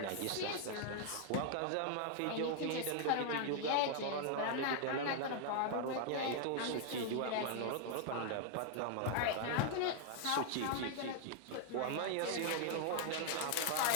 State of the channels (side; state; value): both; different; correlation 0.00